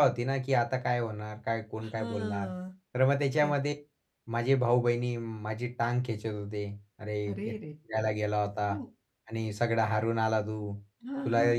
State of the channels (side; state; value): both; identical; correlation 1.00